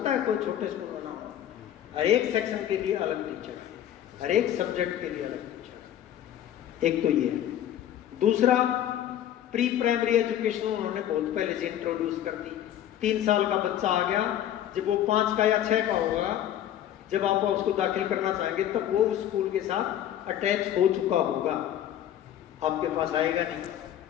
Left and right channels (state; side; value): quieter; right; 11.2 dB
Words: है कोई छोटे स्कूल में ना हो। हर एक सेक्शन के लिए अलग टीचर है, हर एक सब्जेक्ट के लिए अलग टीचर। एक तो ये है। दूसरा, प्री प्राइमरी एजुकेशन उन्होंने बहुत पहले से इंट्रोड्यूस कर दी। 3 साल का बच्चा आ गया, जब वो 5 का या 6 का होगा, जब आप उसको दाखिल करना चाहेंगे तब वो उस स्कूल के साथ अटैच हो चुका होगा, आपके पास आएगा नहीं।